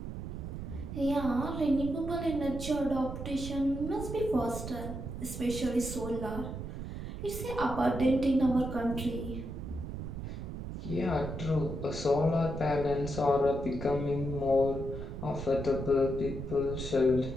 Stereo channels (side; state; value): right; noise; rumble, 7 dB below the sound